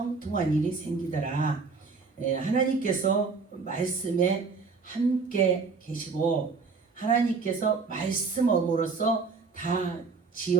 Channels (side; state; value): left; quieter; 4.6 dB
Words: 일이 생기더라. 하나님께서 말씀에 함께 계시고 하나님께서 말씀으로써 다